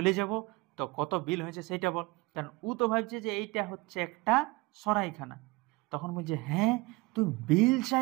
যাব। তো কত বিল হয়েছে সেইটা বল, কারণ ও তো ভাবছে যে এইটা হচ্ছে একটা সরাইখানা। তখন বলছে, হ্যাঁ তুই বিল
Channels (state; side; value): quieter; left; 23.1 dB